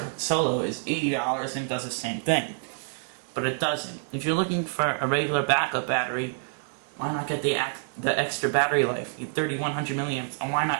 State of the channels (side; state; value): left; silent; digital silence